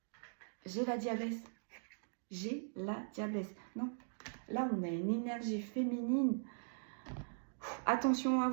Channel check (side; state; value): left; silent; digital silence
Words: J'ai la diablesse. Non, là, on a une énergie féminine Attention à